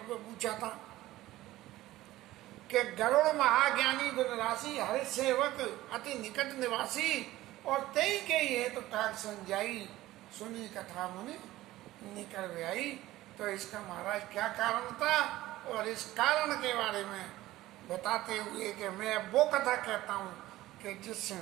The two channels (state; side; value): quieter; left; 16.3 dB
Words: पूछा था कि गरुड़ महाज्ञानी गुणराशि हरि सेवक अति निकट निवासी, और तई के ये तो काग संजाई सुनी कथा मुनि निकल आई। तो इसका महाराज क्या कारण था, और इस कारण के बारे में बताते हुए कि मैं वो कथा कहता हूँ कि जिससे